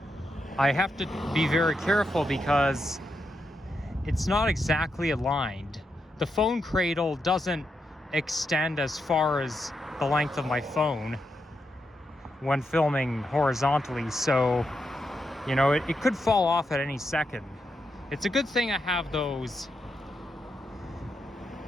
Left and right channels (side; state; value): both; normal; correlation 0.84